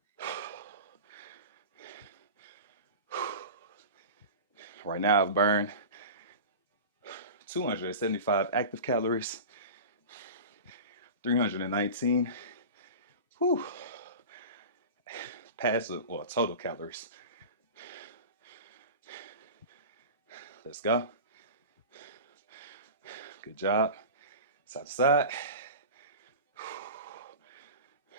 Right now I've burned 275 active calories, 319 passive or total calories. Let's go. Good job. Side to side.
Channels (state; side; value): inverted; both; correlation -0.33